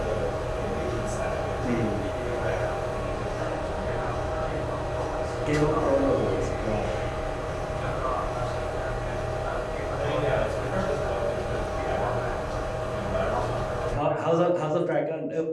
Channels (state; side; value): identical; both; correlation 1.00